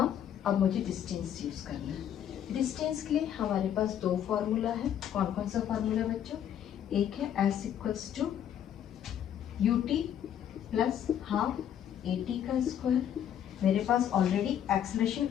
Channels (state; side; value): quieter; right; 9.8 dB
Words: अब मुझे डिस्टेंस यूज करना है। डिस्टेंस के लिए हमारे पास दो फॉर्मूला है। कौन कौन सा फॉर्मूला बच्चों, एक है s equals to ut plus half at का स्क्वायर। मेरे पास ऑलरेडी एक्सेलरेशन